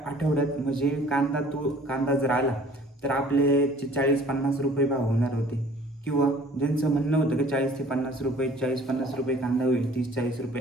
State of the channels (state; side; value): normal; both; correlation 0.52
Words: आठवड्यात, म्हणजे कांदा जर आला तर आपले 40-50 रुपये भाव होणार होते, किंवा ज्यांचं म्हणणं होतं की 40 ते 50 रुपये, 40-50 रुपये कांदा होईल, 30-40